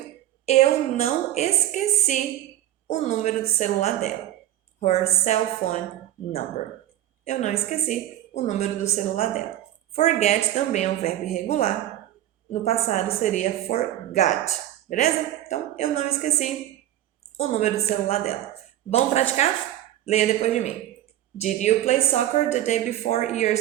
eu não esqueci o número do celular dela. Her cell phone number. Eu não esqueci o número do celular dela. Forget também é um verbo irregular. No passado seria forgot. Beleza? Então, eu não esqueci o número do celular dela. Vamos praticar? Leia depois de mim. Did you play soccer the day before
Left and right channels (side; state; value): left; quieter; 12.9 dB